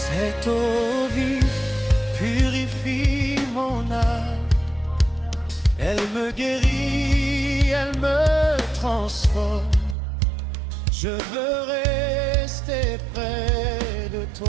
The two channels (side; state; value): left; drops out; at 10.0 s